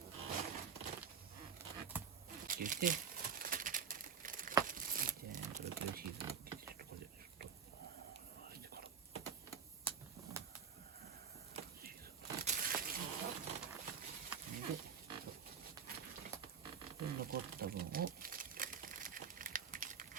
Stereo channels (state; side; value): quieter; left; 6.9 dB